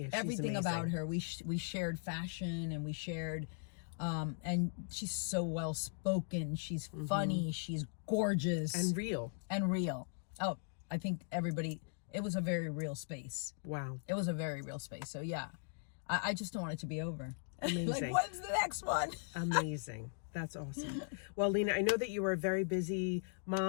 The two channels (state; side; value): silent; right; digital silence